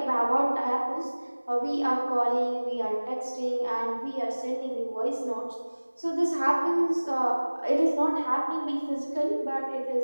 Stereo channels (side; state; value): both; inverted; correlation -1.00